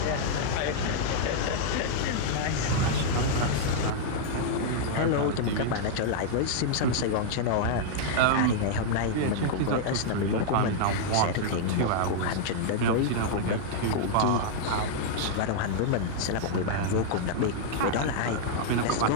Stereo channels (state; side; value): different; both; correlation -0.01